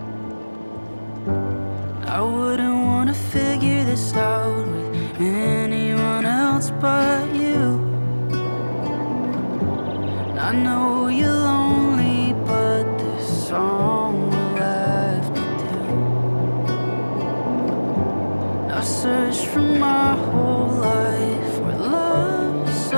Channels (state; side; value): inverted; both; correlation -1.00